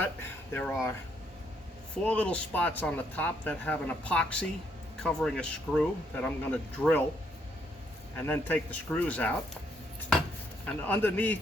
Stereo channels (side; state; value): both; normal; correlation 0.72